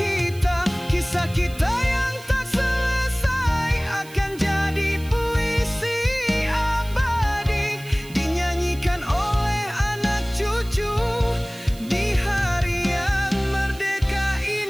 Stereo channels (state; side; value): noise; right; hiss, 20 dB below the sound